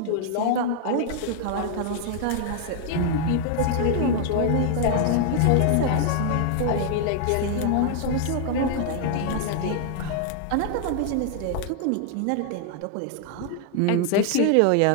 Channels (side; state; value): both; different; correlation 0.00